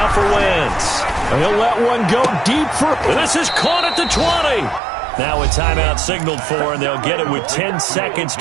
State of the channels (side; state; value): left; drops out; at 4.8 s